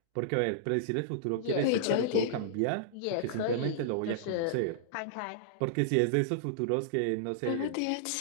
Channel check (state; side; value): different; both; correlation -0.02